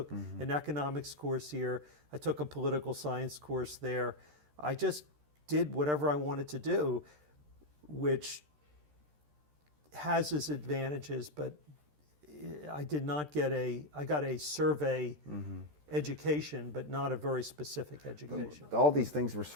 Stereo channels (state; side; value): late; left; 13 ms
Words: an economics course here. I took a political science course there. I just did whatever I wanted to do, which has its advantages, but I did not get I got a survey education, but not a very specific education. All these things were